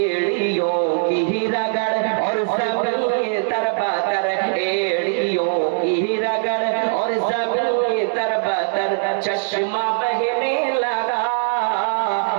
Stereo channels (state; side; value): silent; left; digital silence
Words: की रगड़ और सभी तरबतर, एड़ियों की रगड़ और सभी तरबतर चश्मा बहने लगा।